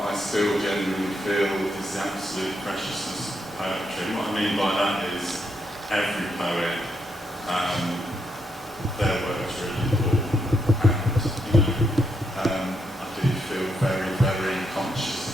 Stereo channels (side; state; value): both; normal; correlation 0.79